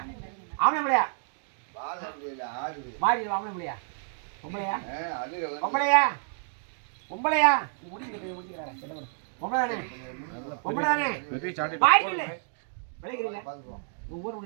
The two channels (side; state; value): left; silent; digital silence